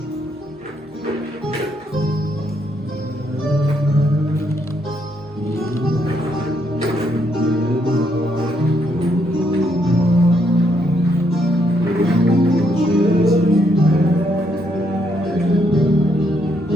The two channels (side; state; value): both; normal; correlation 0.75